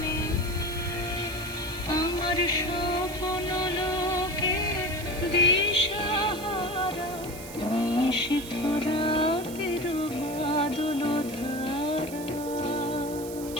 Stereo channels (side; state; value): right; noise; hiss, 14 dB below the sound